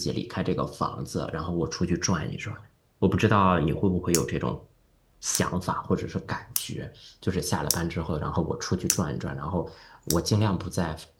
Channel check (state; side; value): identical; both; correlation 1.00